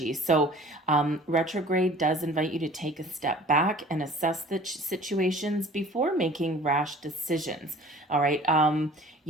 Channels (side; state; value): both; normal; correlation 0.47